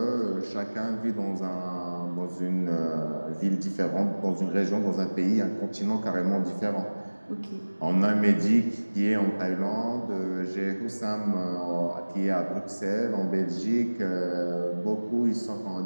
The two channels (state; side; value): inverted; both; correlation -1.00